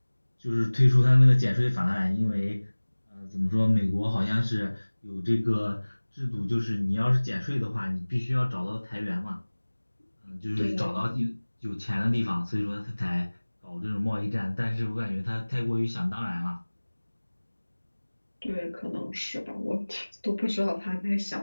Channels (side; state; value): both; inverted; correlation -1.00